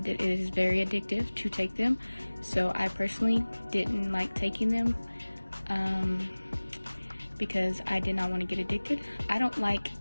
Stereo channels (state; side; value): inverted; both; correlation -1.00